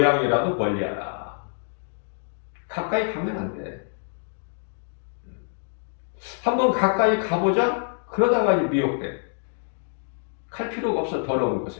멀리하라. 가까이 가면 안 돼. 한번 가까이 가보자. 그러다가 미혹돼. 갈 필요가 없어. 더러운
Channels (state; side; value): silent; right; digital silence